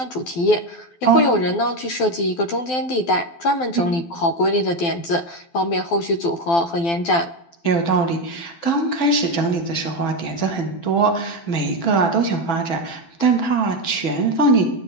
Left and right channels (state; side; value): late; right; 12 ms